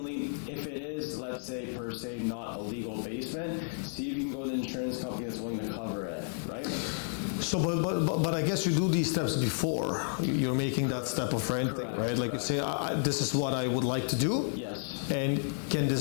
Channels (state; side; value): silent; right; digital silence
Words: if it is, let's say, per se, not a legal basement, see if you can go to the insurance company that's willing to cover it, right? So, but I guess you do these steps before you're making that step of renting, Correct, right? Like you say, this is what I would like to do. Yes. And can